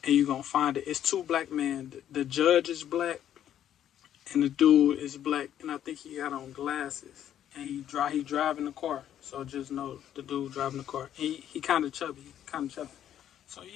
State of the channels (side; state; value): right; quieter; 10.6 dB